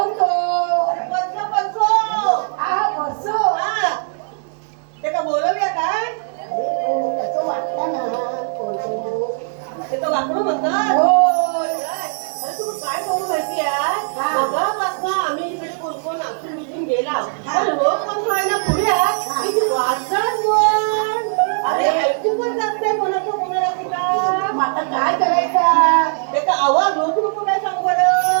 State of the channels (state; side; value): silent; left; digital silence